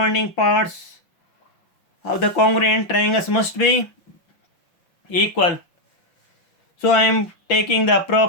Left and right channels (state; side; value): late; right; 5.9 ms